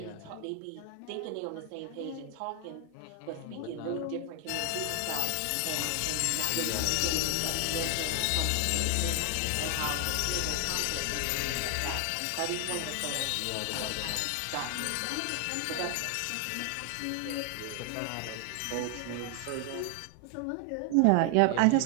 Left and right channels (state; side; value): different; both; correlation 0.00